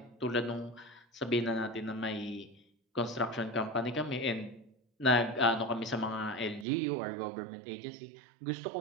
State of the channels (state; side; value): drops out; left; at 6.7 s